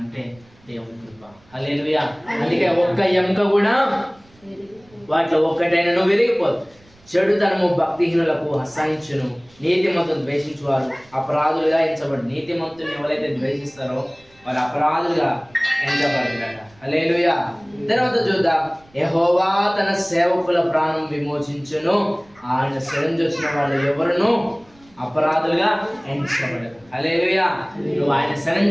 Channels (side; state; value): right; noise; rumble, 30 dB below the sound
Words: అంటే దేవుని కృప. హల్లెలూయా. అందుకే ఒక్క ఎముక కూడా వాటిలో ఒక్కటైనా విరిగిపోదు. చెడుతనము భక్తిహీనులకు అసహించును, నీతిమంతులను ద్వేషించువారు అపరాధులుగా ఎంచబడు. నీతిమంతుని ఎవరైతే ద్వేషిస్తారో వారు అపరాధులుగా ఎంచబడతారట. హల్లెలూయా. తర్వాత చూద్దాం, యెహోవా తన సేవకుల ప్రాణం విమోచించును, ఆయన శరణు వచ్చిన వాళ్ళు ఎవరును అపరాధులుగా ఎంచబడరు. హల్లెలూయా. నువ్వు ఆయన